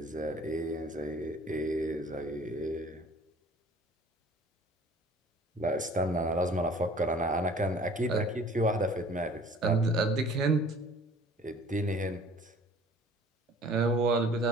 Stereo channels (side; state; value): both; normal; correlation 0.50